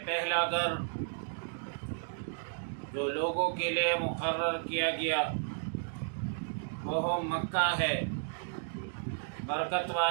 پہلا گھر جو لوگوں کے لیے مقرر کیا گیا وہ مکہ ہے، برکت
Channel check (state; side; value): silent; left; digital silence